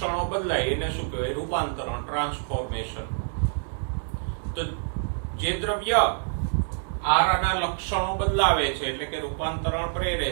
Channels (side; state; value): left; silent; 58 dB below the other